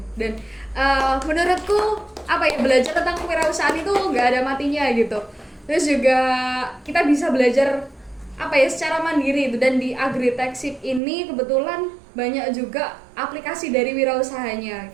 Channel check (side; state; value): left; drops out; at 11.0 s